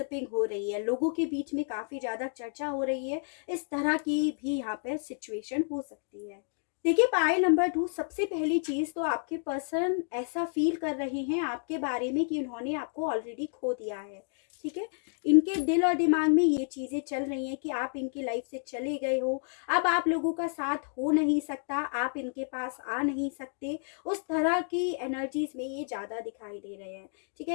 हो रही है, लोगों के बीच में काफ़ी ज़्यादा चर्चा हो रही है। इस तरह की भी यहाँ पर सिचुएशन हो सकती है। देखिए पाइल नंबर 2, सबसे पहली चीज़ तो आपके पर्सन ऐसा फील कर रहे हैं आपके बारे में कि उन्होंने आपको ऑलरेडी खो दिया है। ठीक है, इनके दिल और दिमाग में ये चीज़ें चल रही हैं कि आप इनकी लाइफ से चले गए हो, अब आप लोगों का साथ हो नहीं सकता, आप इनके पास आ नहीं सकते। उस तरह की एनर्जीज में ये ज़्यादा दिखाई दे रहे हैं। ठीक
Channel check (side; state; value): right; silent; 57 dB below the other